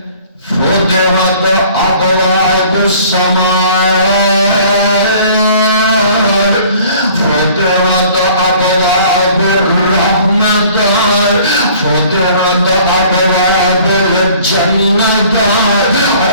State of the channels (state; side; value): inverted; both; correlation -0.53